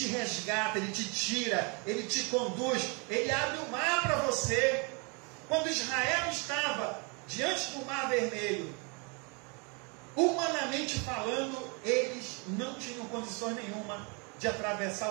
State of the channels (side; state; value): left; quieter; 33.1 dB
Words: resgata, Ele te tira, Ele te conduz, Ele abre o mar para você. Quando Israel estava diante do Mar Vermelho, humanamente falando, eles não tinham condições nenhuma de atravessar